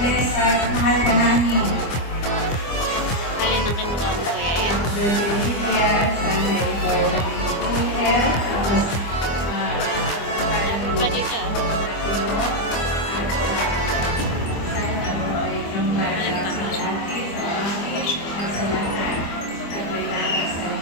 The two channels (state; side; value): late; right; 25 ms